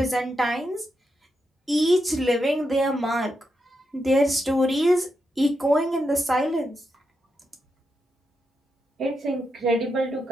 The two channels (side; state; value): both; normal; correlation 0.85